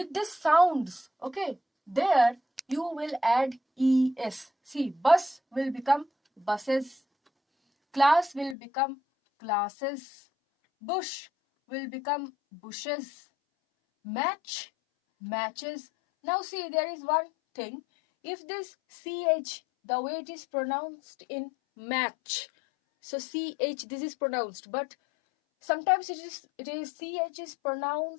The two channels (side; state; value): right; drops out; at 8.6 s